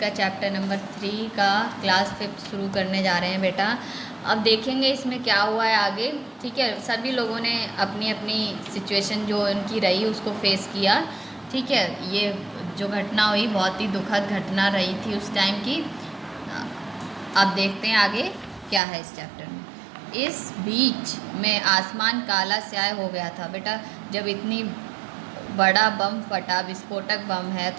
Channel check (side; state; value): left; drops out; at 18.8 s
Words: का चैप्टर नंबर 3 का क्लास 5 शुरू करने जा रहे हैं बेटा। अब देखेंगे इसमें क्या हुआ है आगे। ठीक है, सभी लोगों ने अपनी अपनी सिचुएशन जो उनकी रही उसको फेस किया। ठीक है, ये जो घटना हुई बहुत ही दुखद घटना रही थी उस टाइम की। अब देखते हैं आगे क्या है इस चैप्टर में। इस बीच में आसमान काला स्याह हो गया था बेटा। जब इतनी बड़ा बम फटा, विस्फोटक बम है,